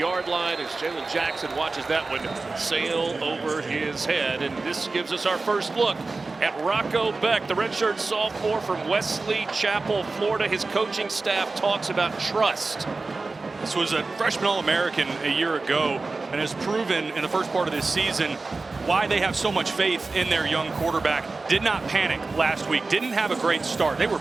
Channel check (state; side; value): quieter; left; 3.7 dB